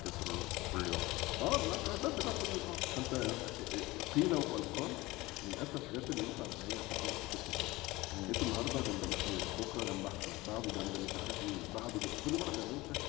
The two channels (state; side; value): quieter; right; 20.5 dB